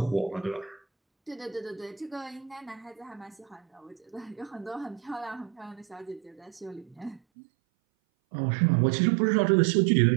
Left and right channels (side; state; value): left; drops out; at 7.2 s